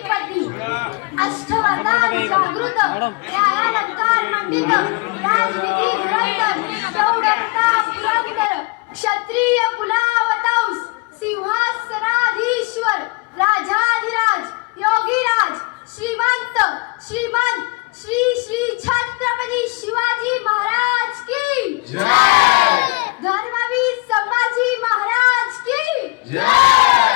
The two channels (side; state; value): right; quieter; 28.4 dB